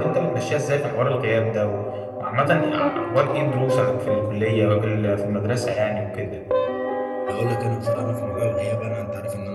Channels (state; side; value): identical; both; correlation 1.00